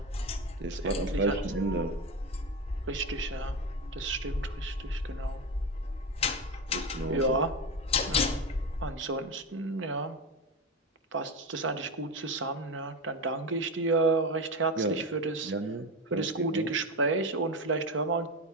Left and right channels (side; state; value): both; normal; correlation 0.19